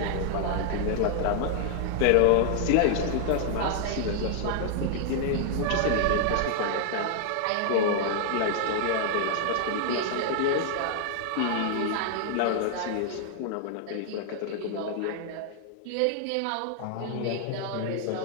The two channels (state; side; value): different; both; correlation 0.00